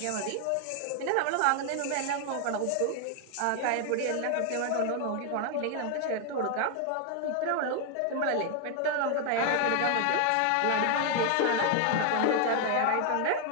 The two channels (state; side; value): different; both; correlation 0.00